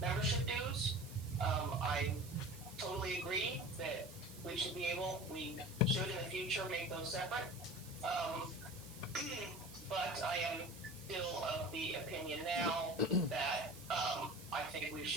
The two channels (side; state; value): right; noise; hiss, 16 dB below the sound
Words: dues. I totally agree that we should in the future make those separate. But I am still of the opinion now that I think we